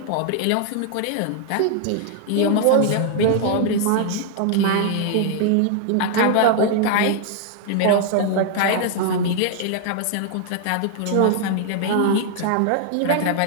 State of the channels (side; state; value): both; different; correlation 0.00